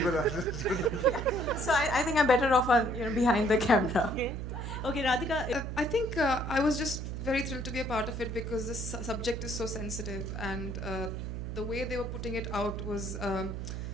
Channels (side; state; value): right; noise; hum, 5 dB below the sound